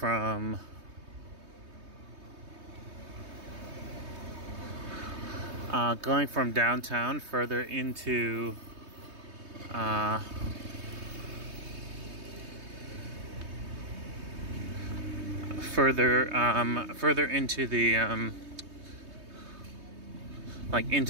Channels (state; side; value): late; left; 3.2 ms